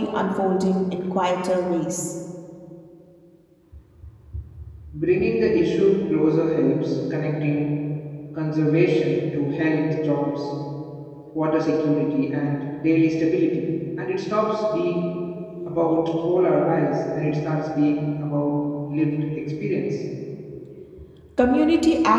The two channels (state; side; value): identical; both; correlation 1.00